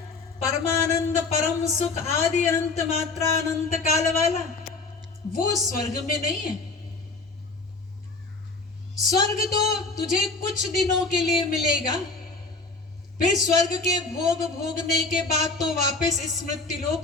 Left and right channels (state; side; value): quieter; right; 3.7 dB